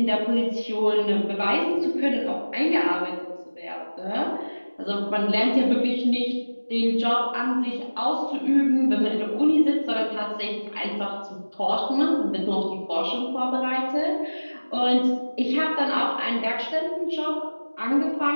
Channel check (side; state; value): both; inverted; correlation -1.00